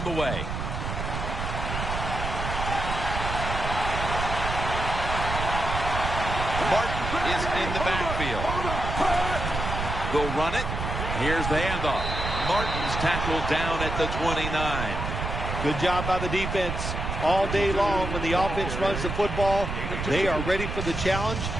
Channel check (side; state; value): right; noise; rumble, 4 dB below the sound